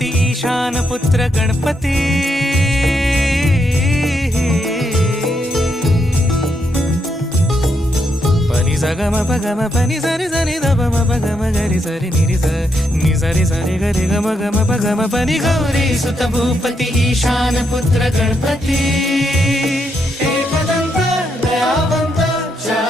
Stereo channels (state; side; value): normal; both; correlation 0.79